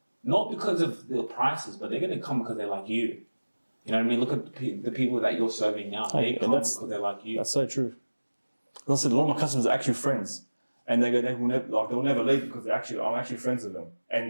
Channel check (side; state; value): both; inverted; correlation -1.00